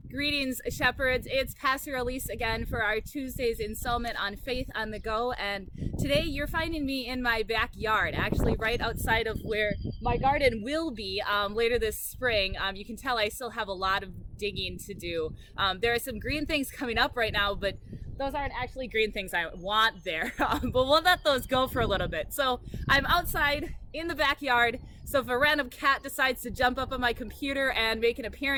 Greetings, shepherds. It's Pastor Elise again for our Tuesday's installment on Faith on the Go. And today you're finding me in my backyard, actually right outside of where my garden will be later this spring. You can tell I still have a lot of digging to do. There are some green things coming up right now, but those aren't actually green things I want there. But we'll let those go for a little bit. So I'm outside in the backyard. So if a random cat decides to jump up on my computer and make an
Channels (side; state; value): both; identical; correlation 1.00